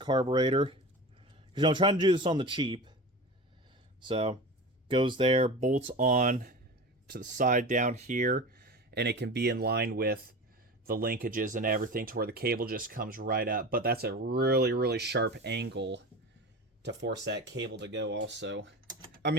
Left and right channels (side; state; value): both; normal; correlation 0.31